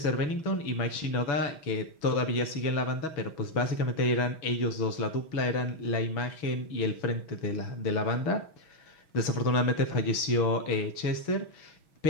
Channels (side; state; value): right; late; 6.2 ms